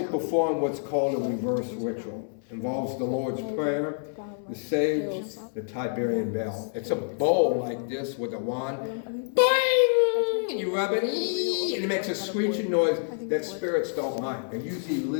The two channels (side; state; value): right; silent; 60 dB below the other